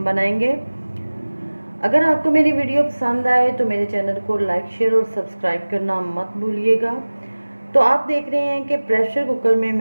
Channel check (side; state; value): both; inverted; correlation -1.00